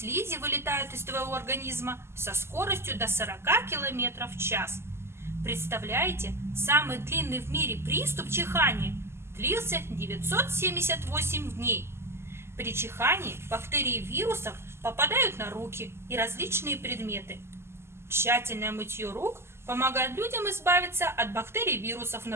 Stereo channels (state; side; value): late; left; 0.12 ms